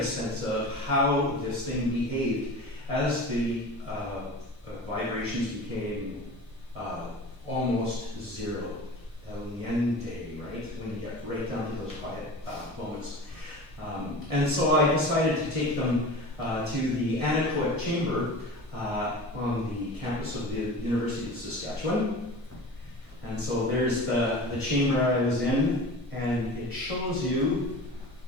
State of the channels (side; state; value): both; normal; correlation 0.35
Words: sense of how this thing behaved as the vibrations became almost zero. El niente, right? When you get right down to those quiet moments. And so I decided to take them to the anechoic chamber on the campus of the University of Saskatchewan. And so there's the chamber I was in, and it shows you